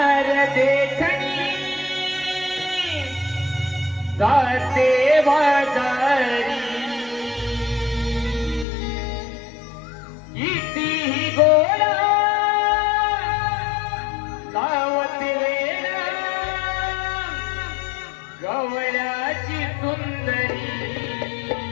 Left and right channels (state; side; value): drops out; right; at 8.7 s